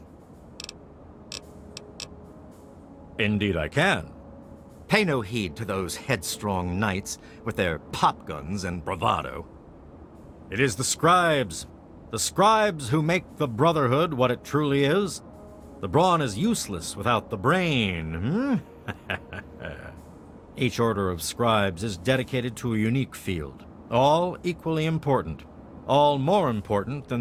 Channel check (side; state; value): both; identical; correlation 1.00